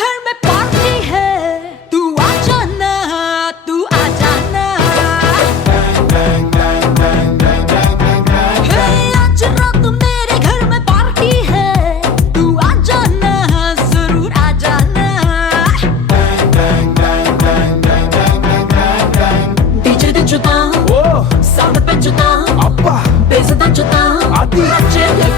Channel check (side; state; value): right; quieter; 5.7 dB